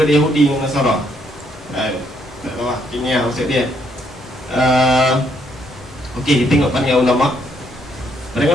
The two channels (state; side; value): normal; both; correlation 0.71